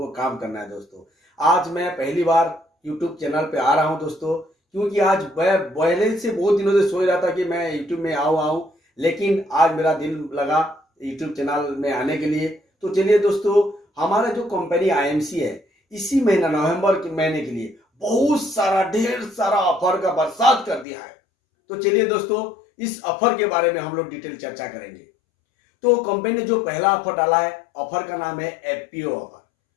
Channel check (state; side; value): drops out; right; at 20.9 s